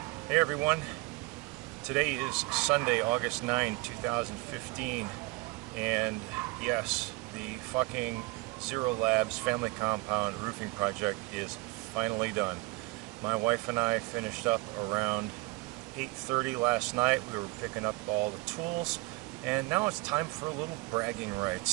Hey everyone, today is Sunday, August 9, 2015, and yes, the fucking Zero Labs family compound roofing project is finally done. My wife and I finished up around 8:30 last night. We were picking up all the tools, and now it's time for a little bragging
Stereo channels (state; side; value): quieter; left; 24.0 dB